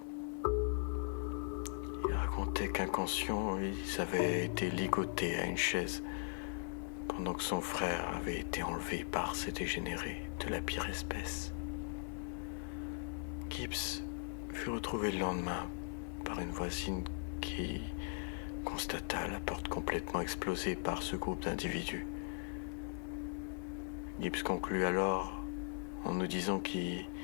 Il racontait qu'inconscients, ils avaient été ligotés à une chaise pendant que son frère avait été enlevé par ces dégénérés de la pire espèce. Gibbs fut retrouvé le lendemain par une voisine qui constata la porte complètement explosée par ce groupe d'individus. Gibbs conclut alors en nous disant qu'il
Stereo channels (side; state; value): right; silent; 52 dB below the other